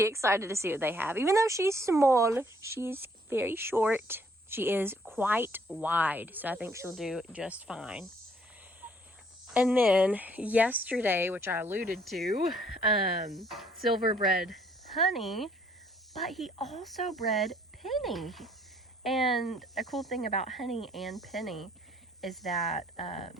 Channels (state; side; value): normal; both; correlation 0.64